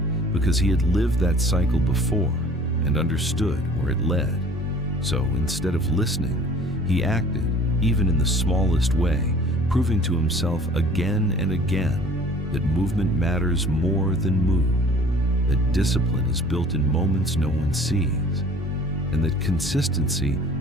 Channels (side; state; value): both; normal; correlation 0.50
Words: because he had lived that cycle before and understood where it led. So instead of listening, he acted, even in the smallest way, proving to himself again and again that movement matters more than mood, that discipline is built in moments no one sees, and that consistency